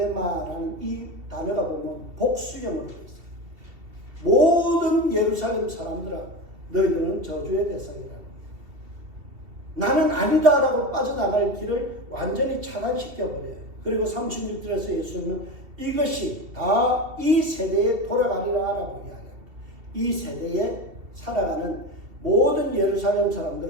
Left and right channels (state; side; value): late; left; 2.7 ms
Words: 이 단어가 보면 복수형으로 되어 있어요. 모든 예루살렘 사람들아, 너희들은 저주의 대상이라는 거예요. 나는 아니다라고 빠져나갈 길을 완전히 차단시켜버려요. 그리고 36절에서 예수님은 이것이 다 이 세대에 돌아가리라 라고 이야기합니다. 이 세대에 살아가는 모든 예루살렘